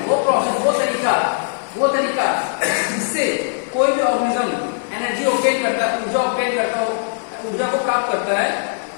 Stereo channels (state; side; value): silent; right; 57 dB below the other